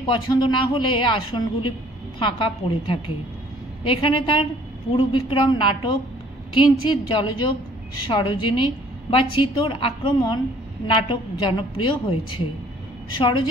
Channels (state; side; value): normal; both; correlation 0.57